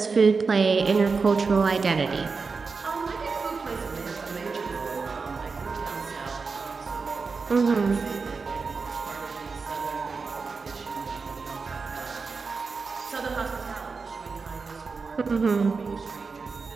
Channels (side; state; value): left; quieter; 4.7 dB